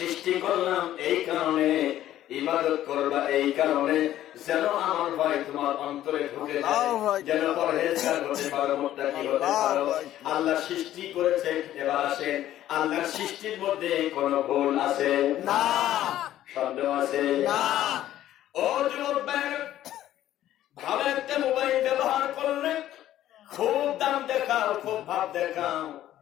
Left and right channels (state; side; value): quieter; right; 12.9 dB